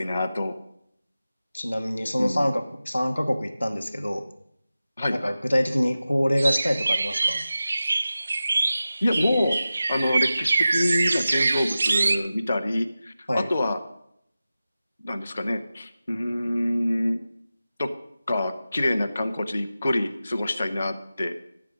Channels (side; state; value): both; inverted; correlation -0.94